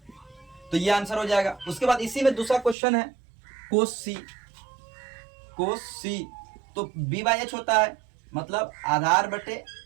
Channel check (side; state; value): left; drops out; at 2.8 s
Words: तो ये आंसर हो जाएगा। उसके बाद इसी में दूसरा क्वेश्चन है कोस सी, तो बी बाई एच होता है, मतलब आधार बटे